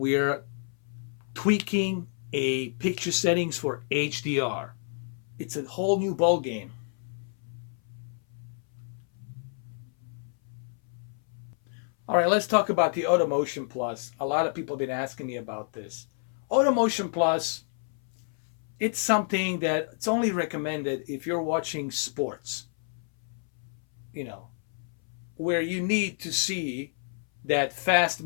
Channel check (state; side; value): silent; right; 59 dB below the other